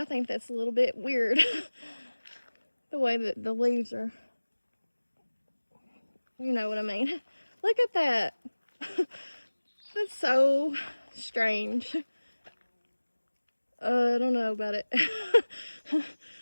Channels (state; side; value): inverted; both; correlation -1.00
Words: think that's a little bit weird. The way that the leaves are, you know what I mean. Look at that. That's so strange. I don't know about it.